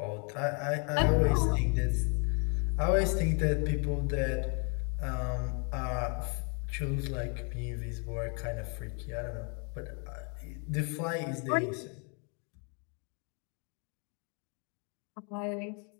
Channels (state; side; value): quieter; right; 37.8 dB